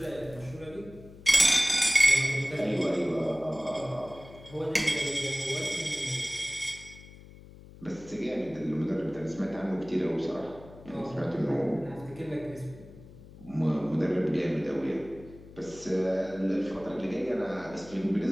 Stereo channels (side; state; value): left; noise; hum, 19 dB below the sound